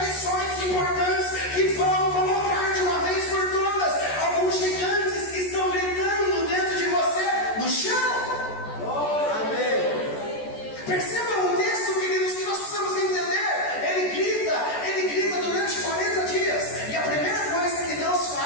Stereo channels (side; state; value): right; late; 14 ms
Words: lições importantes que vão colocar de uma vez por todas alguns gigantes que estão gritando dentro de você no chão. Percebam o texto, queridos, que nós precisamos entender. Ele grita durante 40 dias. E a primeira coisa que Deus